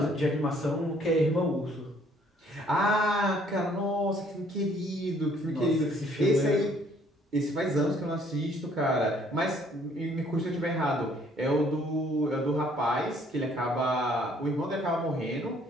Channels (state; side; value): normal; both; correlation 0.61